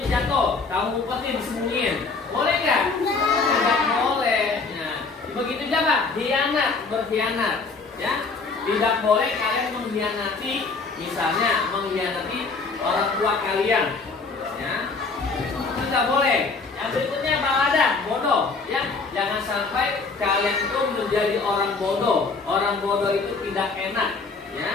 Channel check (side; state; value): right; quieter; 4.2 dB